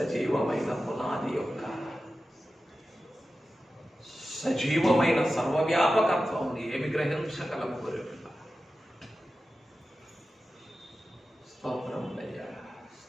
పునాది యొక్క సజీవమైన సర్వవ్యాపకత్వం ఏమి గ్రహించగలము? గొర్రెపిల్ల. స్తోత్రములయ్యా,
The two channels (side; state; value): both; normal; correlation 0.93